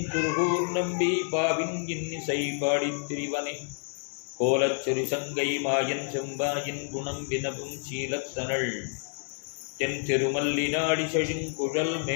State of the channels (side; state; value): right; silent; digital silence